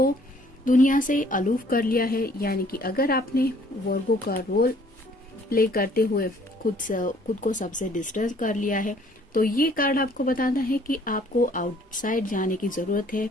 दुनिया से अलूफ कर लिया है, यानी कि अगर आपने वर्गो का रोल प्ले करते हुए खुद को सबसे डिस्टेंस कर लिया है, तो ये कार्ड आपको बताता है कि आपको आउटसाइड जाने की जरूरत है।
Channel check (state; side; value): normal; both; correlation 0.59